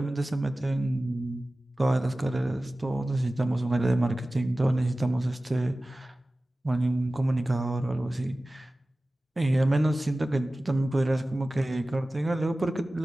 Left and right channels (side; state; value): both; normal; correlation 0.97